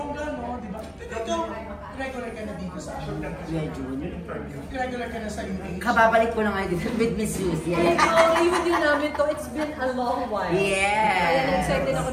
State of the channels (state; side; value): identical; both; correlation 1.00